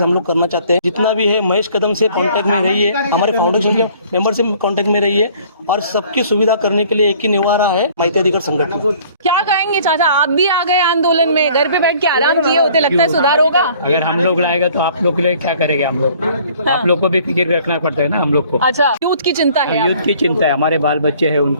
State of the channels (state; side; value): inverted; both; correlation -0.55